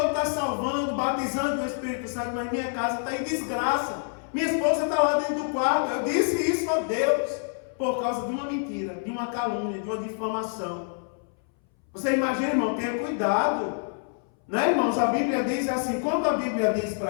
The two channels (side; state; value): right; silent; 60 dB below the other